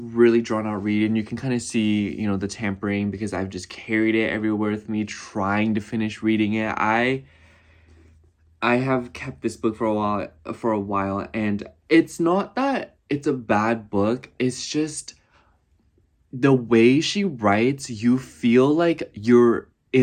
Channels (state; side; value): identical; both; correlation 1.00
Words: drawn out read, and you can kind of see, you know, the tampering, because I've just carried it everywhere with me trying to finish reading it. I have kept this book for a while, and it's not that it's a bad book. It's just the way she writes, you feel like you're